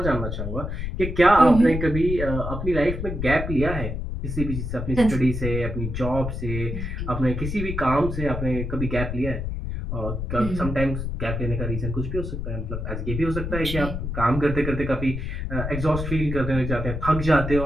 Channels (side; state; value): left; noise; rumble, 4 dB below the sound